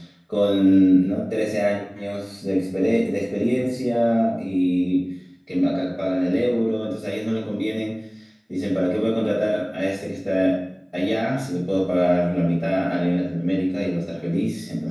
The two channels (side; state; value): both; identical; correlation 1.00